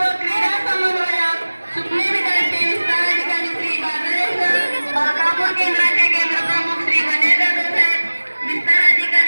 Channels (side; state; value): both; inverted; correlation -1.00